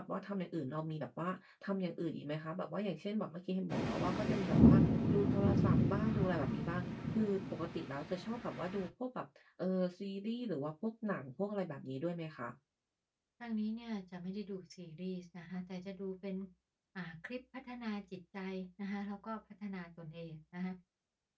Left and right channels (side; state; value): both; identical; correlation 1.00